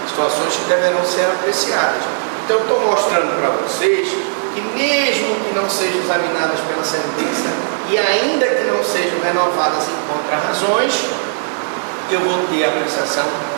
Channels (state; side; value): silent; left; digital silence